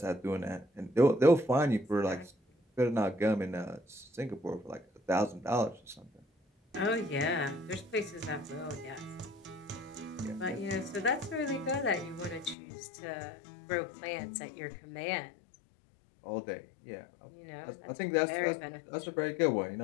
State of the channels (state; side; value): drops out; right; at 12.6 s